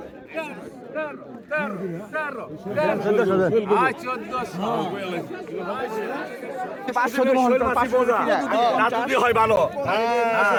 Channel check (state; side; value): identical; both; correlation 1.00